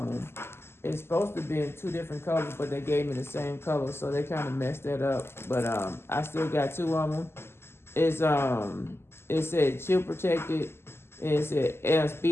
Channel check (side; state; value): right; late; 0.12 ms